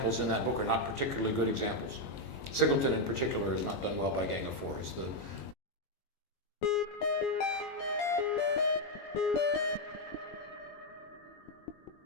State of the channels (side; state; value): right; late; 22 ms